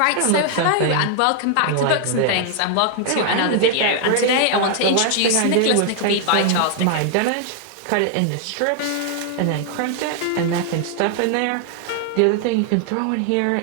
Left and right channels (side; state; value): both; different; correlation 0.00